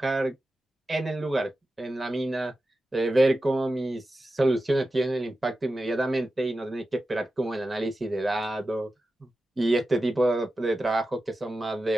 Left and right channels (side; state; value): both; normal; correlation 0.92